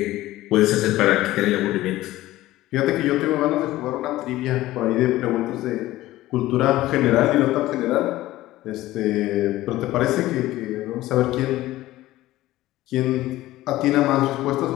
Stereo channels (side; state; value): right; quieter; 16.3 dB